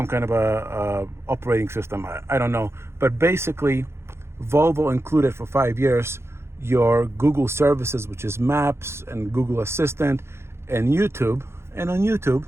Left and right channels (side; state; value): left; late; 0.12 ms